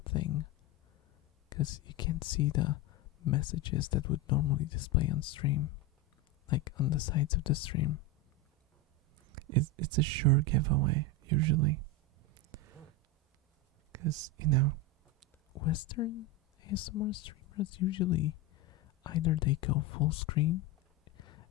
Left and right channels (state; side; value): normal; both; correlation 0.13